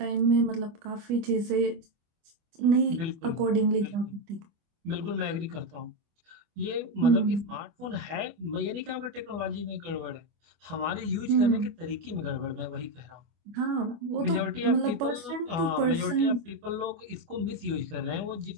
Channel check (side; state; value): left; late; 25 ms